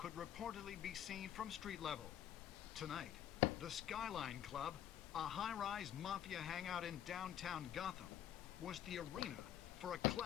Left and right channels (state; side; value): quieter; right; 10.7 dB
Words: reportedly be seen from street level. Tonight, the Skylайн Club, a high-rise mafia hangout in downtown Gotham, was the arena for a